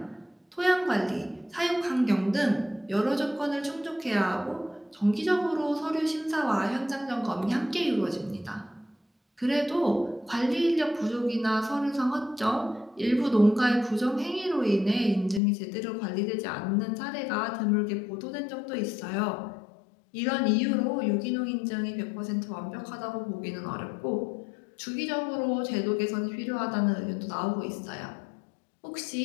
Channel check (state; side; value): drops out; right; at 15.4 s